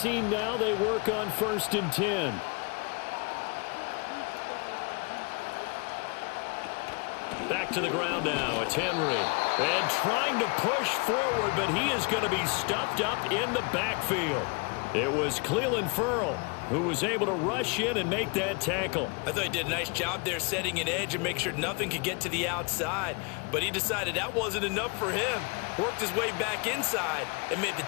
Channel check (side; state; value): right; quieter; 31.7 dB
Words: now, they work on 1st and 10. Back to the ground now. It's Henry. And trying to push forward, but he is going to be stuffed up in the backfield. It was Clelin Ferrell who was able to rush in and make that tackle. I thought he did a nice job there setting an edge and make sure nothing could get to the outside. But he decided that wasn't enough for him. Worked his way back inside and made the